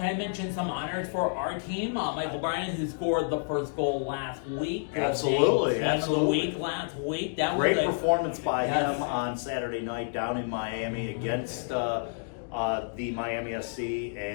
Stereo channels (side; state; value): right; silent; digital silence